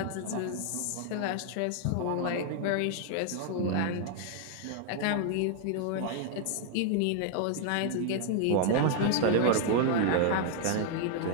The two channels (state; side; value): different; both; correlation 0.00